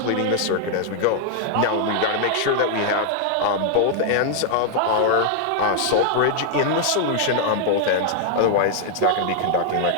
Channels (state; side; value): different; both; correlation 0.00